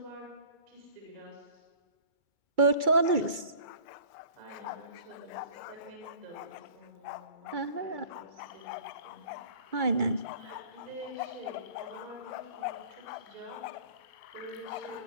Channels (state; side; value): late; left; 2.3 ms